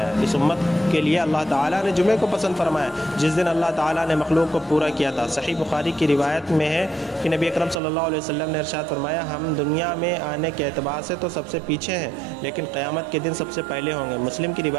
اس امت کے لیے اللہ تعالیٰ نے جمعے کو پسند فرمایا جس دن اللہ تعالیٰ نے مخلوق کو پورا کیا تھا۔ صحیح بخاری کی روایت میں ہے کہ نبی اکرم صلی اللہ علیہ وسلم نے ارشاد فرمایا، ہم دنیا میں آنے کے اعتبار سے تو سب سے پیچھے ہیں لیکن قیامت کے دن سب سے پہلے ہوں گے۔ مسلم کی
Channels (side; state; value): left; drops out; at 7.8 s